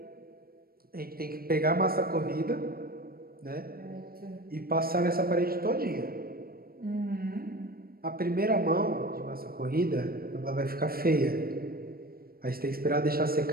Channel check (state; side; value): late; left; 0.44 ms